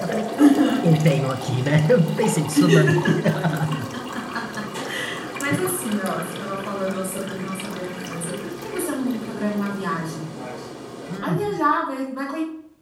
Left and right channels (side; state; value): both; identical; correlation 1.00